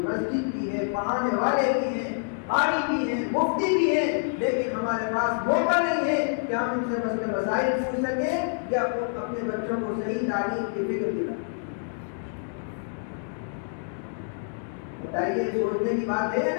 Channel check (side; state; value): right; silent; digital silence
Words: مسجد بھی ہے, پڑھانے والے بھی ہیں, قاری بھی ہیں, مفتی بھی ہیں, لیکن ہمارے پاس موقع نہیں ہے کہ ہم ان سے مسئلے مسائل پوچھ سکیں یا اپنے بچوں کو صحیح تعلیم کی فکر دلائیں. بتائیے, سوچنے کی بات ہے یا